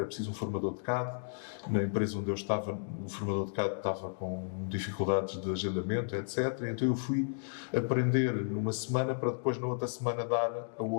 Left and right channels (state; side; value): silent; right; digital silence